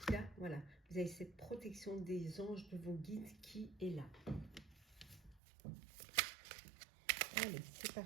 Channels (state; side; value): drops out; left; at 5.4 s